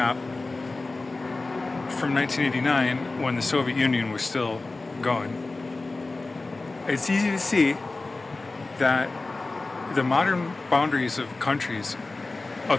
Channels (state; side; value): quieter; right; 3.4 dB